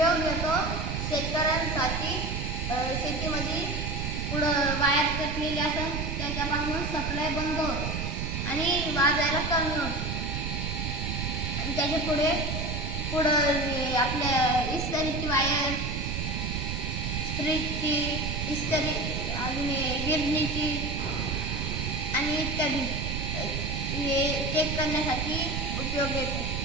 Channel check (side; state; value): right; noise; rumble, 2 dB below the sound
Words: घेतो शेतकऱ्यांसाठी. शेतीमध्ये पुढं वायर कटलेली असेल त्याच्यापासून सप्लाय बंद होतो आणि वाजायला कमी होतो. आणि त्याच्या पुढं आपल्या इस्त्रीची वायर, स्त्रीची इस्त्री, अजून गिरणीची आणि इत्यादी हे चेक करण्यासाठी उपयोग येतो.